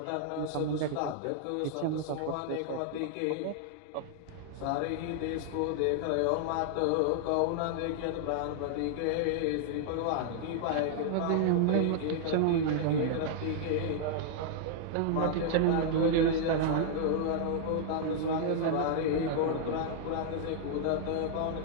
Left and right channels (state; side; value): different; both; correlation -0.01